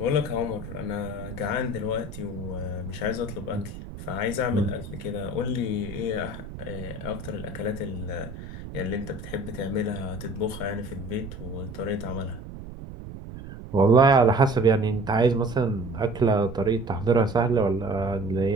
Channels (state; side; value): noise; right; rumble, 11 dB below the sound